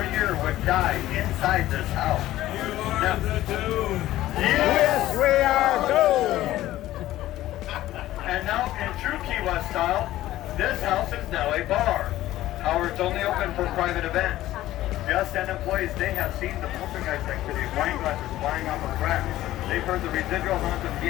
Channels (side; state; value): right; quieter; 14.9 dB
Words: year would die inside this house. Now, yes, we are doomed! And now, in true Key West style, this house is now a bar. However, it's only open for private events. Guests and employees, they have seen the poltergeist activity, wine glasses flying off of cracks. They've heard the residual haunt of